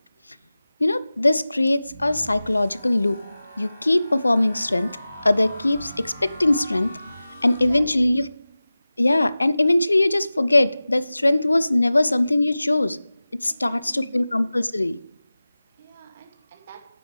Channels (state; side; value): inverted; both; correlation -0.97